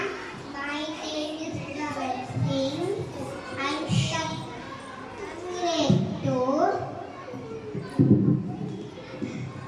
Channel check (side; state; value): both; identical; correlation 1.00